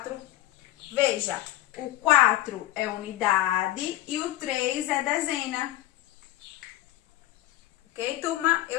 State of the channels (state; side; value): quieter; right; 15.5 dB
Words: Veja, o 4 é unidade e o 3 é dezena. Ok, turma?